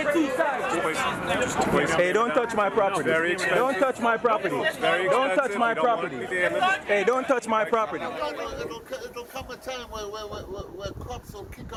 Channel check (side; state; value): both; identical; correlation 1.00